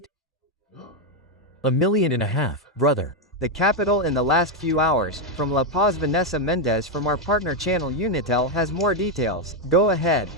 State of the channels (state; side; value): normal; both; correlation 0.03